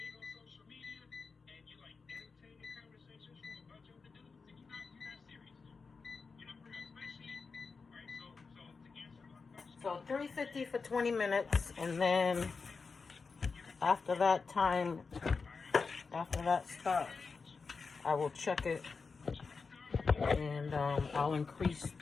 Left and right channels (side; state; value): right; quieter; 4.8 dB